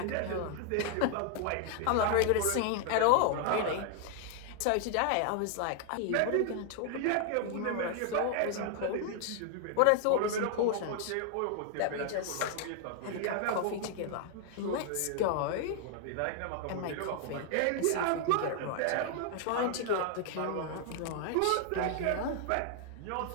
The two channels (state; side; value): different; both; correlation 0.00